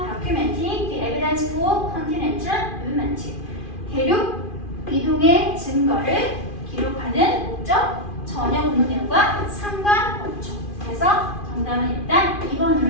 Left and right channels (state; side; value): late; right; 2.4 ms